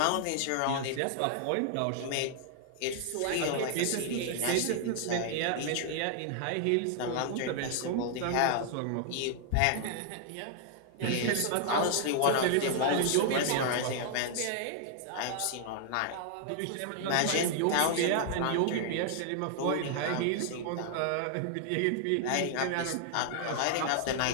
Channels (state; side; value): different; both; correlation -0.01